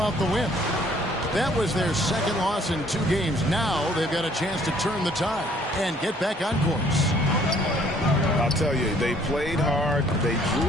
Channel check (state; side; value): normal; both; correlation 0.60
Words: the win. That was their second loss in 2 games. Now they've got a chance to turn the tide and get back on course. I'll tell you, they played hard, they drew